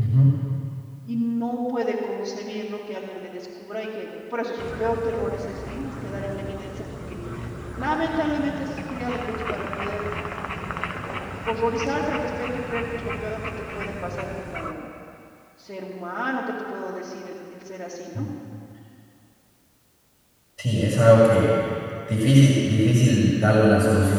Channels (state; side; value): identical; both; correlation 1.00